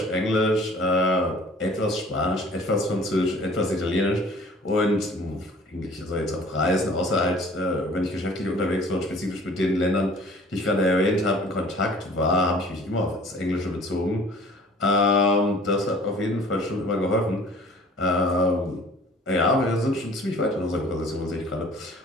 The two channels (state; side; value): normal; both; correlation 0.49